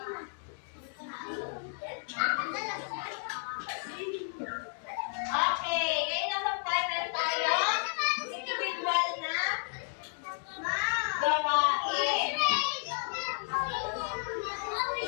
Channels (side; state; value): right; silent; 56 dB below the other